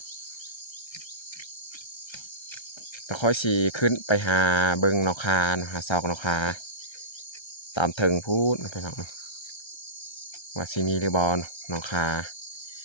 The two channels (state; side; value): late; right; 1.3 ms